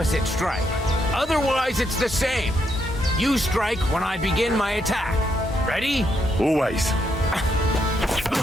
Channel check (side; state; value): both; normal; correlation 0.78